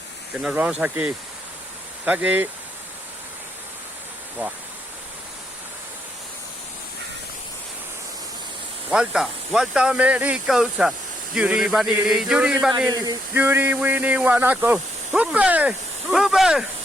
que nos vamos aquí. Está aquí. Buah. Vuelta americosa. Yuri vanili, yuri winnie wanako. ¡Upe!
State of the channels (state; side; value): normal; both; correlation 0.76